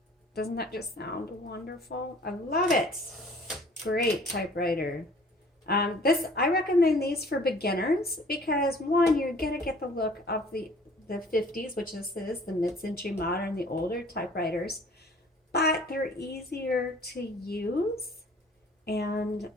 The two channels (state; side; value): normal; both; correlation 0.52